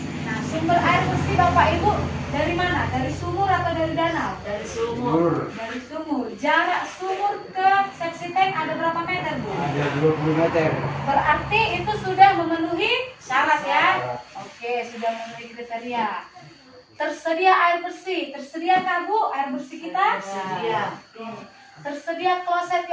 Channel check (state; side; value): identical; both; correlation 1.00